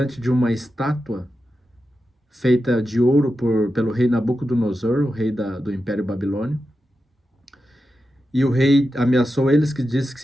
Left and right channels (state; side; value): normal; both; correlation 0.90